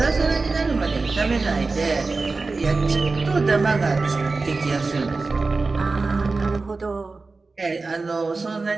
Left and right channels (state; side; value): quieter; left; 3.8 dB